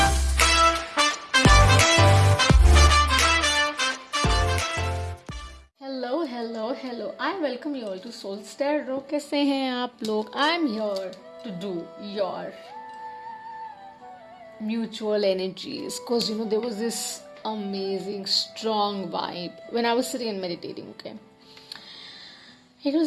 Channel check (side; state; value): both; identical; correlation 1.00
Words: hello hello hello I welcome you all to soul stereo. कैसे हैं आप लोग? I am here to do your mutual energies because there was this amazing strong vibe when I was sitting and meditating. Okay, it